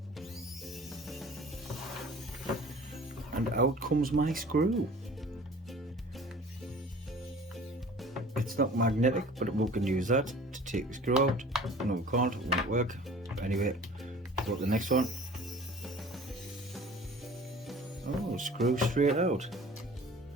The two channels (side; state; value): both; normal; correlation 0.46